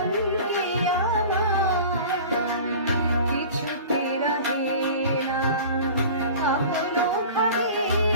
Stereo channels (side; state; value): both; inverted; correlation -0.40